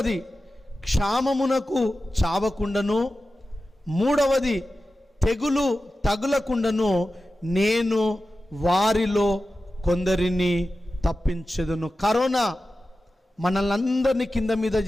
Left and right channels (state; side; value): normal; both; correlation 0.93